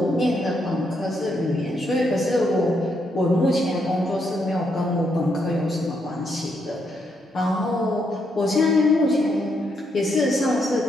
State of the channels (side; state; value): both; normal; correlation 0.77